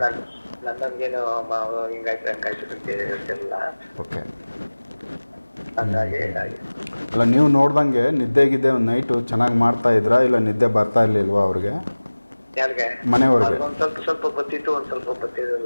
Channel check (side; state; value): both; inverted; correlation -1.00